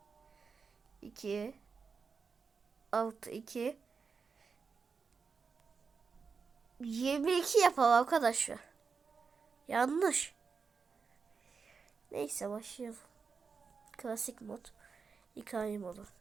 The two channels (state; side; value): quieter; left; 5.3 dB